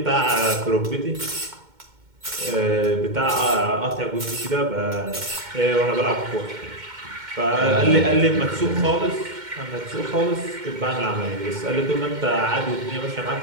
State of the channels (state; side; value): late; left; 2.2 ms